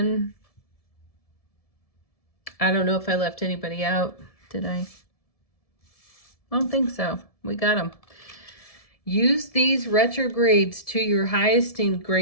I don't know if I left anybody out. Did I? I don't think so. We got them. Use these retrogrades to your highest and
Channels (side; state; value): right; late; 1.7 ms